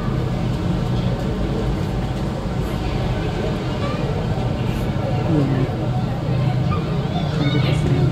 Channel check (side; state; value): both; identical; correlation 1.00